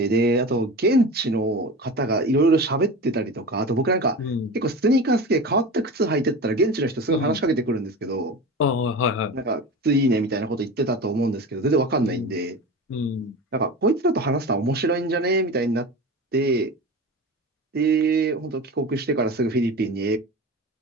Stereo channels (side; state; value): both; normal; correlation 0.30